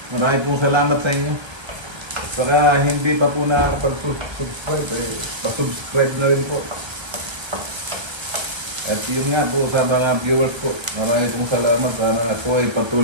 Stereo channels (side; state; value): left; late; 1.3 ms